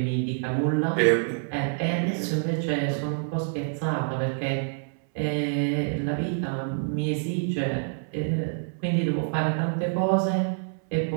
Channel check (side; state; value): left; silent; 60 dB below the other